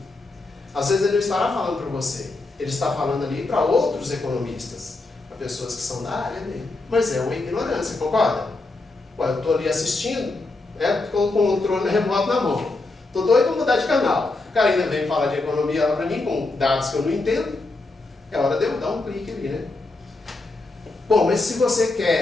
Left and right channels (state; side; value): quieter; right; 3.2 dB